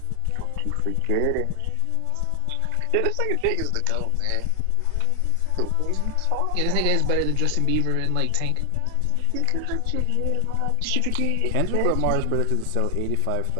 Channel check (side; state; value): both; different; correlation 0.00